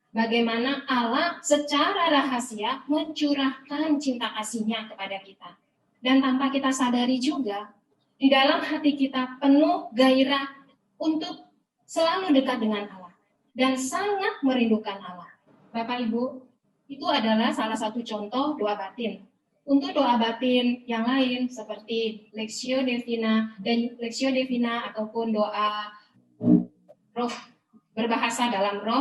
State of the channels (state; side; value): identical; both; correlation 1.00